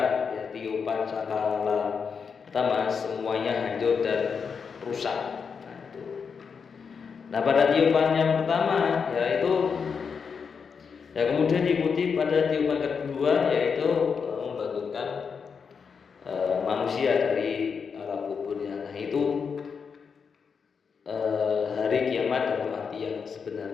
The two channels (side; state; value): right; quieter; 6.0 dB